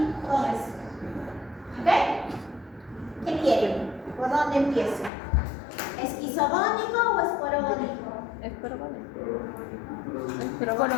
con eso. ¿Ok? ¿Qué quieren? ¿Por dónde empiezo? ¿Esquizogónico o esporogónico? Esporogónico.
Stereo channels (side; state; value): right; drops out; at 5.1 s